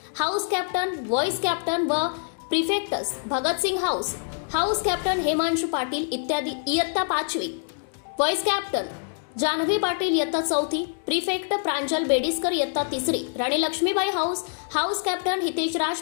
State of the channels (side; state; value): right; silent; digital silence